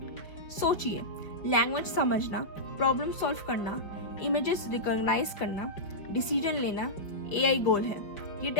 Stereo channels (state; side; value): late; right; 5.2 ms